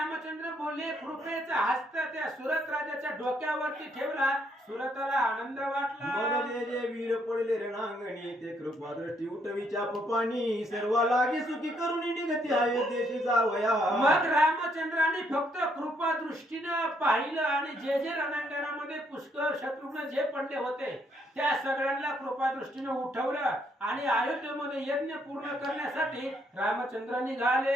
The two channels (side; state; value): both; normal; correlation 0.71